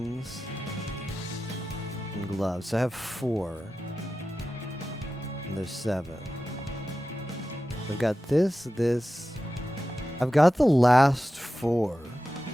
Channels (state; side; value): normal; both; correlation 0.93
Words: and gloves. So I have 4. And there's 7. I've got this. I've got the last 4.